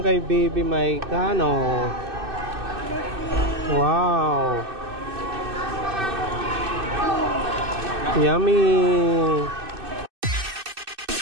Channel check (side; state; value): left; late; 2.6 ms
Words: Baby Maika, no? Wow! Yummy!